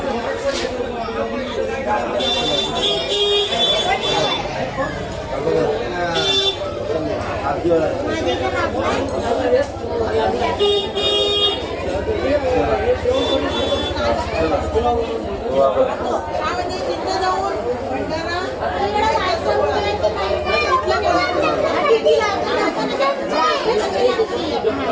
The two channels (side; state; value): both; identical; correlation 1.00